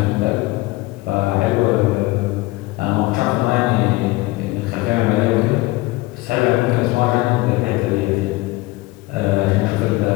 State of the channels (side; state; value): right; quieter; 20.5 dB